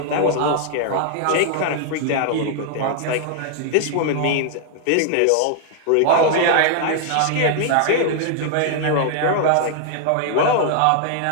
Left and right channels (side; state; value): both; different; correlation 0.00